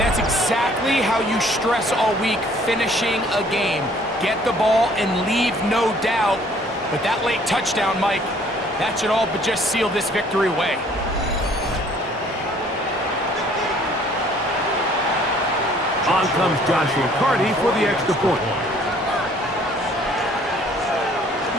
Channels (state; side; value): normal; both; correlation 0.58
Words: that's exactly how you stress all week, finishing a game. Get the ball and leave no doubt. But that late touchdown, Mike, that should all but just seal this victory away. On comes Joshua Carty for the extra point.